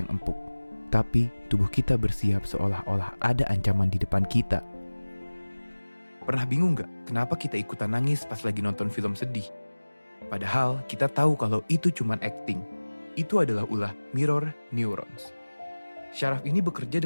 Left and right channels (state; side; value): inverted; both; correlation -1.00